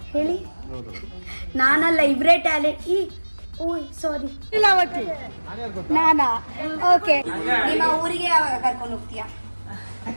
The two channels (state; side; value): inverted; both; correlation -1.00